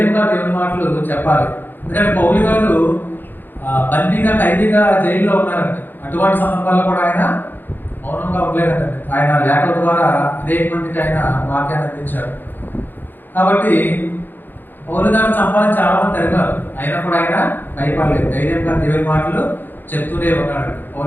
దేవుని మాటలు చెప్పాలి. ఎందుకంటే పౌలు గారు బందీగా ఖైదీగా జైల్లో ఉన్నారండి. అటువంటి సందర్భాల్లో కూడా ఆయన మౌనంగా ఉండలేదండి. ఆయన లేఖల ద్వారా అనేక మందికి ఆయన వాక్యాన్ని అందించాడు. కాబట్టి పౌలు గారు చంపాలని చాలా మంది తరిగారు, అయినా కూడా ఆయన భయపడలేదు. ధైర్యంగా దేవుని మాటలు చెప్తూనే ఉన్నాడు.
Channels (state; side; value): late; right; 0.091 ms